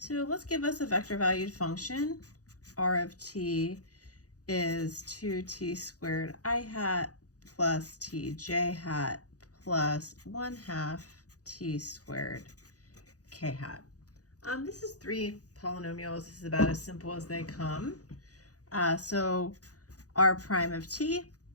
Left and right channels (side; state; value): right; late; 0.67 ms